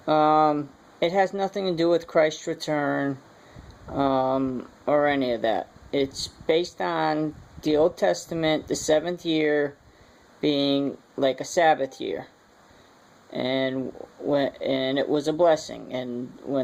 it has nothing to do with Christ's return or any of that. It's based on the Old Testament, the 7th year being like a Sabbath year, and it was a blessing, and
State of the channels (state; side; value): identical; both; correlation 1.00